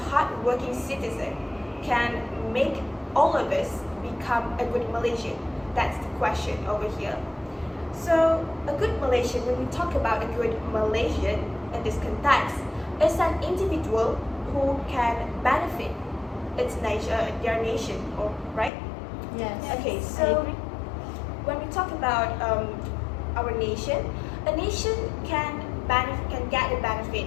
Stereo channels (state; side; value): drops out; right; at 18.7 s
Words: citizen can make all of us become a good Malaysian? That's the question over here. So a good Malaysian, when we talk about a good Malaysian in this context, is an individual who can benefit their nation, right? Yes. Okay, so when we talk about our nation, a nation can get a benefit